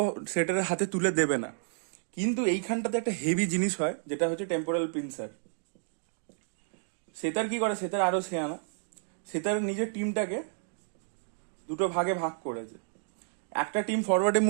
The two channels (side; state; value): left; silent; digital silence